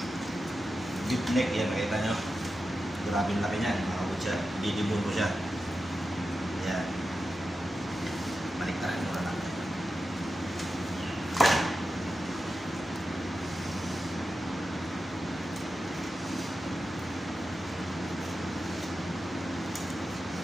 deep neck yan, nakita nyo. Grabe laki niyan mga kabutcher, didibon ko siya. Yan. Baliktaran mo na lang.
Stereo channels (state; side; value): normal; both; correlation 0.91